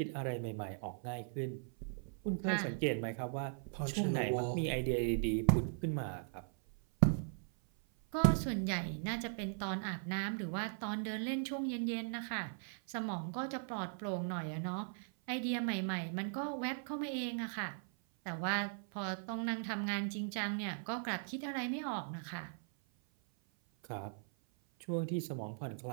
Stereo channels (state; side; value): silent; left; 52 dB below the other